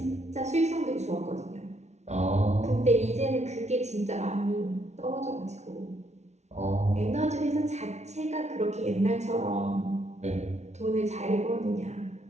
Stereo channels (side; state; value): left; late; 0.32 ms